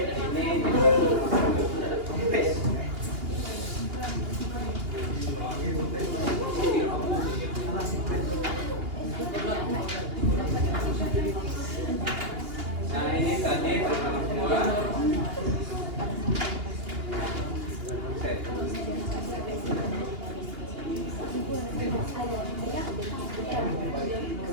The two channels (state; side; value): late; left; 2.8 ms